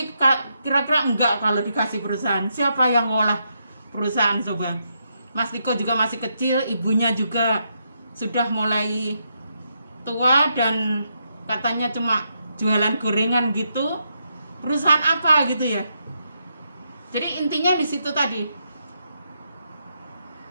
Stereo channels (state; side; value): inverted; both; correlation -0.80